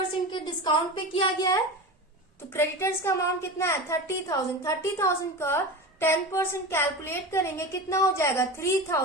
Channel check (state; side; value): normal; both; correlation 0.27